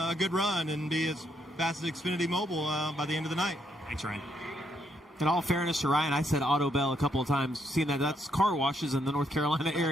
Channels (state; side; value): normal; both; correlation 0.75